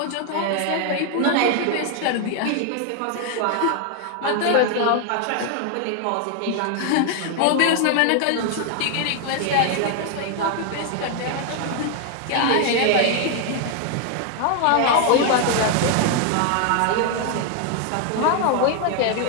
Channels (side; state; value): both; different; correlation 0.00